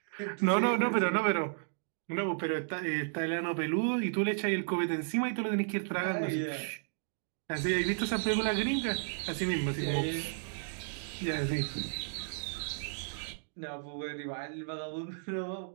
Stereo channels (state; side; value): silent; left; digital silence